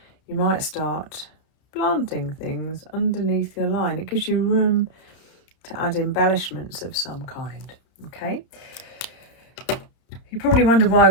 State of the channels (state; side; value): late; right; 31 ms